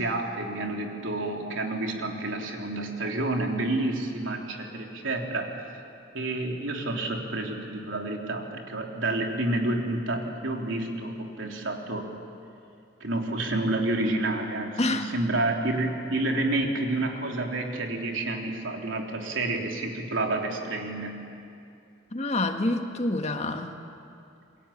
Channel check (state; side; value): normal; both; correlation 0.36